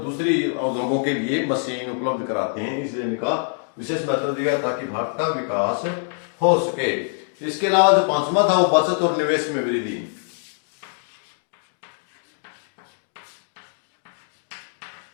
उद्योगों के लिए मशीन उपलब्ध कराते हैं, इसलिए इनका विशेष महत्व दिया ताकि भारत का विकास हो सके। इसके अलावा जो 5वां था वो बचत और निवेश में वृद्धि।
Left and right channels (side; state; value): right; silent; 63 dB below the other